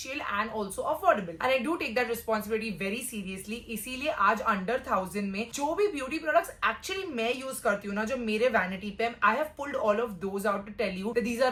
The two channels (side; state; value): both; identical; correlation 1.00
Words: and also affordable. And I do take that responsibility very seriously. इसीलिए आज under 1000 में जो भी beauty products actually मैं use करती हूँ ना, जो मेरे वैनिटी पे, I have pulled all of those out to tell you that these